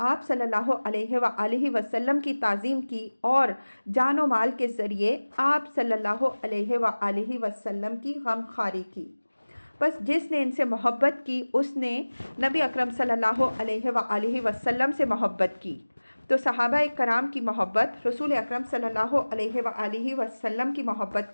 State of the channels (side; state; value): both; inverted; correlation -1.00